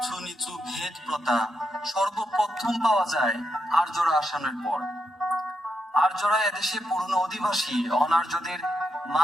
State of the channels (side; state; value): both; normal; correlation 0.83